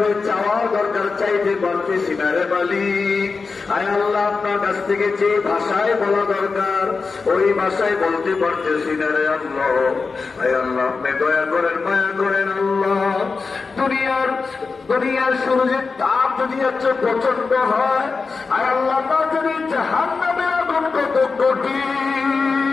চাওয়া দরকার চাইতে পারতেছি না রে মালিক। আয় আল্লাহ, আপনার কাছ থেকে যে ভাষায় বলা দরকার ওই ভাষায় বলতে পারতেছি না রে আল্লাহ। আয় আল্লাহ, আপনি দয়া করেন, মায়া করেন আল্লাহ। দুনিয়ার সূর্যের তাপ যদি এত প্রচন্ড হয়, আয় আল্লাহ, তা যদি জাহান্নামের আগুন কত কঠিন।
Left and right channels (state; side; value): quieter; right; 4.5 dB